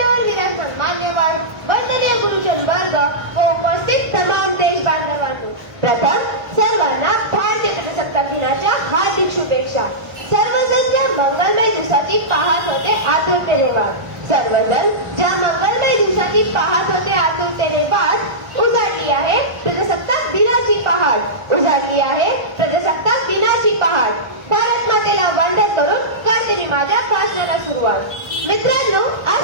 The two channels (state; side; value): late; left; 1.1 ms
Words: विराजमान मान्यवर, वंदनीय गुरुजन वर्ग व उपस्थित तमाम देश बांधवांनो, प्रथम सर्वांना भारतीय प्रजासत्ताक दिनाच्या हार्दिक शुभेच्छा। सर्वजण ज्या मंगलमय दिवसाची पाहत होते आतुरतेने वाट, सर्वजण ज्या मंगलमय दिवसाची पाहत होते आतुरतेने वाट, उजाडली आहे प्रजासत्ताक दिनाची पहाट, उजाडली आहे प्रजासत्ताक दिनाची पहाट। भारत मातेला वंदन करून करते मी माझ्या भाषणाला सुरुवात। मित्रांनो,